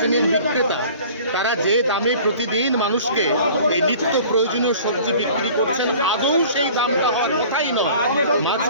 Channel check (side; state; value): both; inverted; correlation -0.47